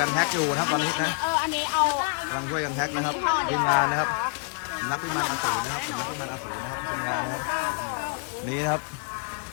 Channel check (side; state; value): right; quieter; 39.4 dB